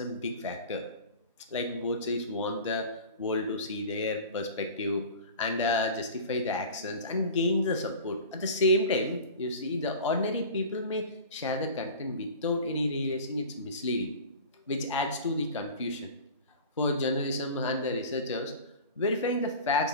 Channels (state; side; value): inverted; both; correlation -0.37